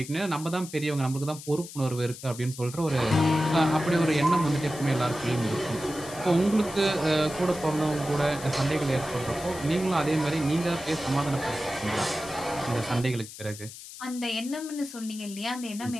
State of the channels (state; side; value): noise; left; hiss, 14 dB below the sound